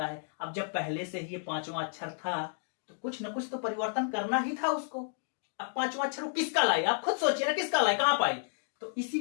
है। अब जब पहले से ही ये पांचवा अक्षर था तो कुछ ना कुछ तो परिवर्तन करना ही था उसको। अब पांचवा अक्षर वो किसका लाए, आप खुद सोचिए ना, किसका लाए, कहां पाए, तो इसी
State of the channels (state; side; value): silent; right; digital silence